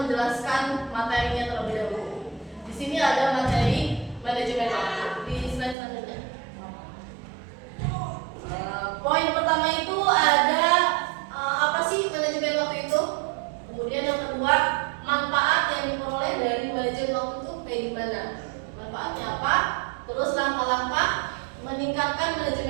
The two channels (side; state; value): left; drops out; at 5.8 s